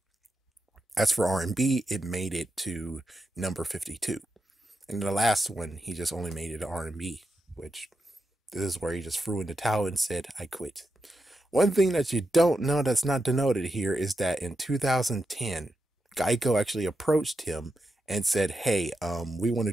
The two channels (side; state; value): both; normal; correlation 0.87